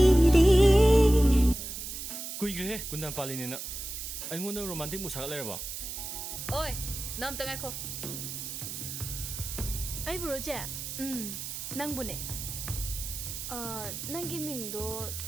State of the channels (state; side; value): noise; right; hiss, 7 dB below the sound